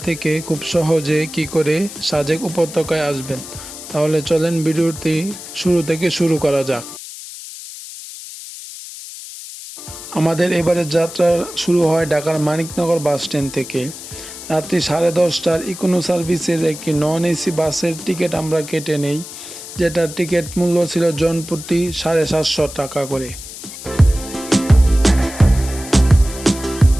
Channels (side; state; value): left; noise; hiss, 13 dB below the sound